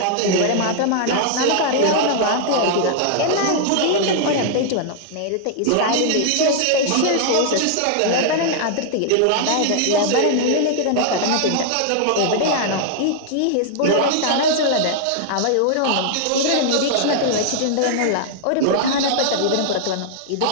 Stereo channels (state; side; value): different; both; correlation -0.01